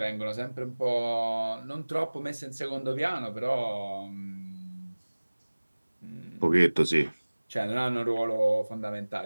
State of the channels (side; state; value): both; inverted; correlation -1.00